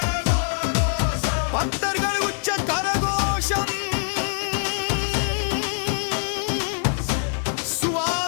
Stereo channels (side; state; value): right; silent; 56 dB below the other